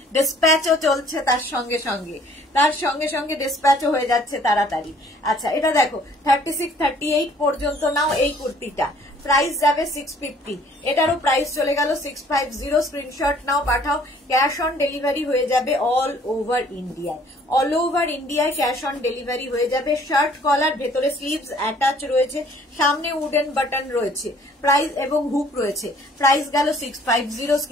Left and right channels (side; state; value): both; normal; correlation 0.58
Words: ডিসপ্যাচও চলছে তার সঙ্গে সঙ্গে ডিসপ্যাচও হয়ে যাচ্ছে তাড়াতাড়ি। আচ্ছা, এটা দেখো 36-38 পর্যন্ত নাও এই কুর্তিটা, প্রাইস যাবে 650। এটারও প্রাইস চলে গেল 650। স্ক্রিনশট নাও, পাঠাও। ক্যাশ অন ডেলিভারি হয়ে যাবে অল ওভার ইন্ডিয়ায়, অল ওভার ইন্ডিয়ায় ক্যাশ অন ডেলিভারি হয়ে যাবে। শার্ট কলার, ভেতরে স্লিভস অ্যাটাচ রয়েছে, সামনে উডেন বাটন রয়েছে, প্রাইস এবং হুক রয়েছে। প্রাইস গেল 650।